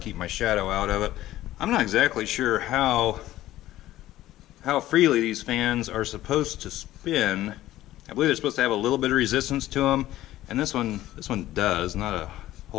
my shadow out of it. I'm not exactly sure how freely these fans are supposed to spin. I believe they're supposed to have a little bit of resistance to them, and this one does, not a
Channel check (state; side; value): quieter; right; 14.7 dB